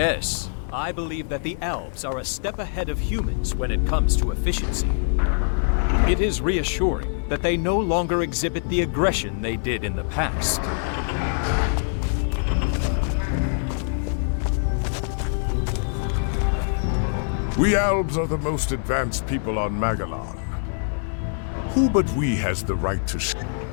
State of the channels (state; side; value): silent; right; digital silence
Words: I believe that the Elves are a step ahead of humans when it comes to efficiency. It is reassuring that they no longer exhibit the aggression they did in the past. We Elves are the most advanced people on Magellan. Who but we has the right to...